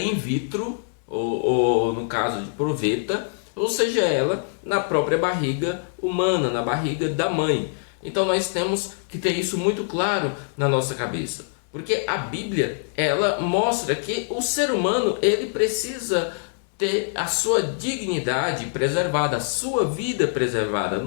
vitro, ou no caso de proveta, ou seja ela na própria barriga humana, na barriga da mãe. Então nós temos que ter isso muito claro na nossa cabeça, porque a Bíblia, ela mostra que o ser humano, ele precisa ter a sua dignidade preservada, a sua vida preservada.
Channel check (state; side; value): silent; right; 61 dB below the other